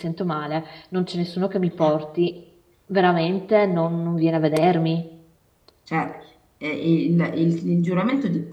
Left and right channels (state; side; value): identical; both; correlation 1.00